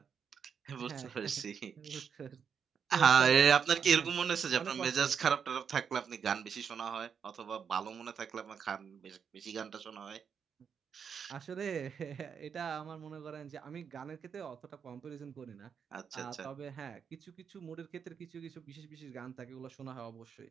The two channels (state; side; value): quieter; left; 7.0 dB